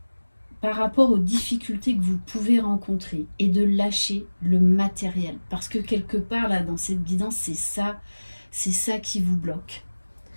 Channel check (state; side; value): inverted; both; correlation -1.00